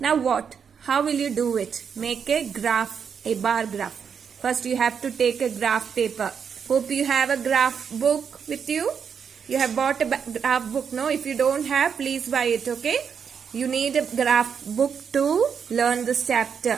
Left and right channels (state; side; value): quieter; left; 7.0 dB